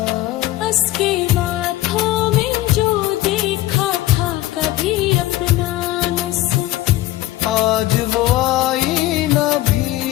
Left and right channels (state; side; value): quieter; right; 16.2 dB